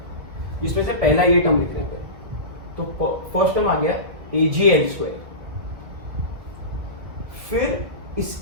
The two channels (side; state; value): left; late; 2.0 ms